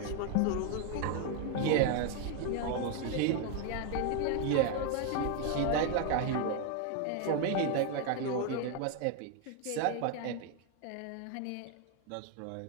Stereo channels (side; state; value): both; different; correlation 0.01